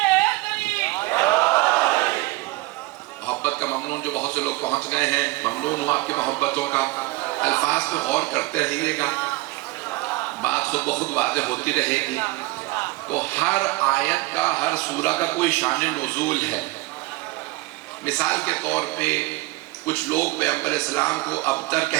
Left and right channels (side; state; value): left; quieter; 20.7 dB